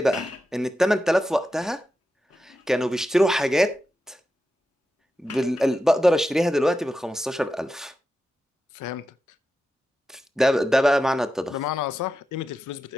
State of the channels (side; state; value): both; normal; correlation 0.90